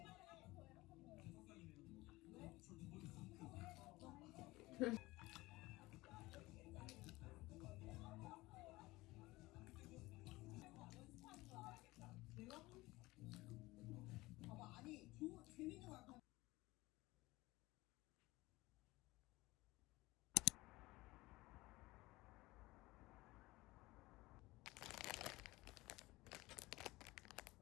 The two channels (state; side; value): quieter; right; 20.2 dB